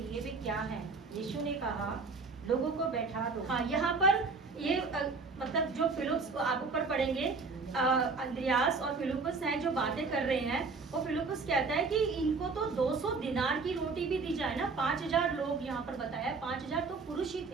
वे क्या हैं? यीशु ने कहा, लोगों को बैठा दो। हाँ, यहाँ पर ये मतलब जो फिलिप्स, आप ऊपर पढ़ेंगे, अंद्रयास और फिलिप्पस हैं जो बातें कर रहे हैं। वो फिलिप्पस कहता है कि इनको तो 200 दिनार की रोटी भी दी जाए ना। 5000 लोग यहाँ पर बताया, 5000 तो पुरुष ही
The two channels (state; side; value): quieter; left; 4.3 dB